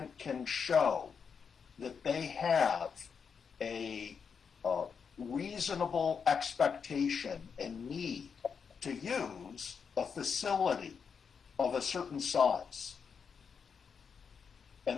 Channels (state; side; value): quieter; right; 6.3 dB